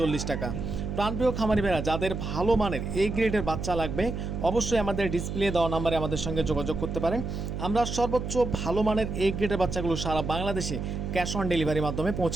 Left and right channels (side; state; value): right; noise; hum, 5 dB below the sound